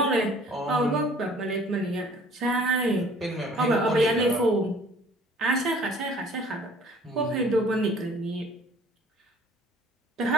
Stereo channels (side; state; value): both; normal; correlation 0.53